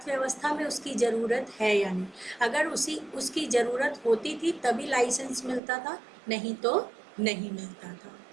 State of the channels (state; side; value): drops out; left; at 5.6 s